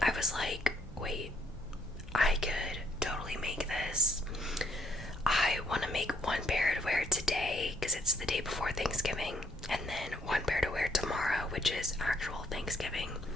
I was like, wait, I could totally make this. I want to make one pair to wear today because it's the day before Thanksgiving, and then one pair to wear tomorrow, which is actual Thanksgiving.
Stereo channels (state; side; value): normal; both; correlation 0.69